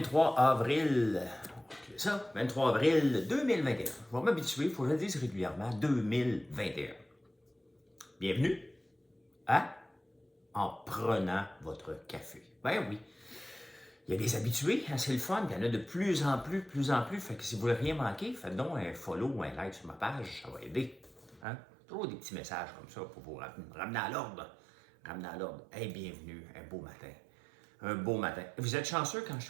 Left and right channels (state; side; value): drops out; left; at 21.5 s